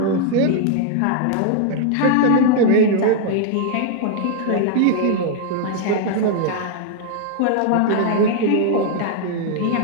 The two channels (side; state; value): both; different; correlation 0.00